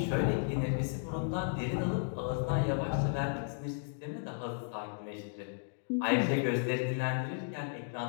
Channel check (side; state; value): right; silent; digital silence